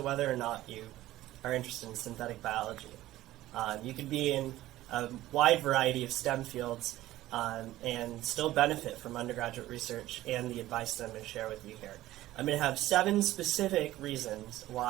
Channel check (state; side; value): quieter; left; 15.5 dB